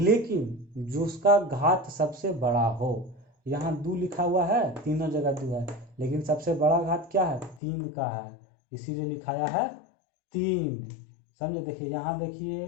जो उसका घात सबसे बड़ा हो। यहाँ 2 लिखा हुआ है, तीनों जगह 2 है, लेकिन सबसे बड़ा घात क्या है 3 का है, इसीलिए लिखाया है 3। समझे? देखिए यहाँ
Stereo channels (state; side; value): drops out; right; at 7.6 s